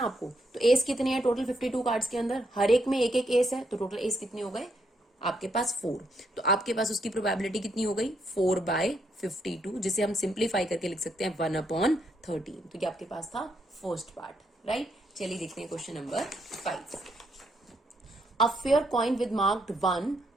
आपको, तो एस कितने हैं टोटल 52 कार्ड्स के अंदर, हर एक में एक एक एस है, तो टोटल एस कितने हो गए आपके पास 4। तो आपके पास उसकी प्रोबेबिलिटी कितनी हो गई 4/52, जिसे हम सिंप्लीफाई करके लिख सकते हैं 1/13। तो ये आपके पास था फर्स्ट पार्ट, राइट। चलिए देखते हैं question number 5। A fair coin with marked 1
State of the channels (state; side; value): normal; both; correlation 0.76